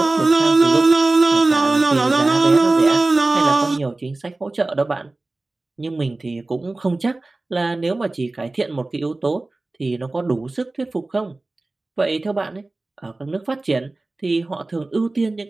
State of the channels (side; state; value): left; quieter; 3.1 dB